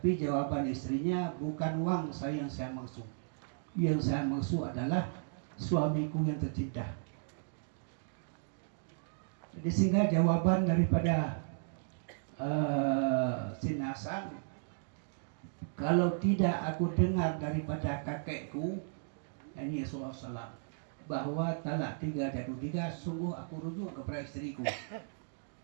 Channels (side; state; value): left; silent; digital silence